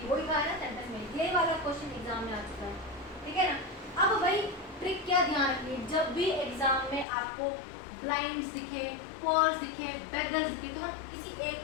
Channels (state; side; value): drops out; right; at 7.1 s